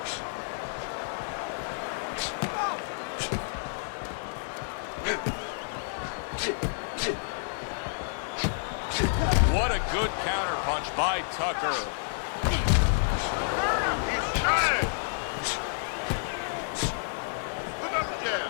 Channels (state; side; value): silent; right; digital silence